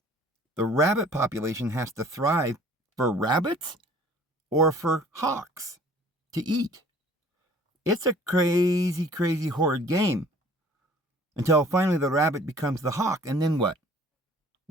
The rabbit population has to thrive for rabbits or for hawks to eat. It's a crazy, crazy, horrid game. Until finally the rabbit becomes the hawk. And then what?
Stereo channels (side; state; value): both; normal; correlation 0.52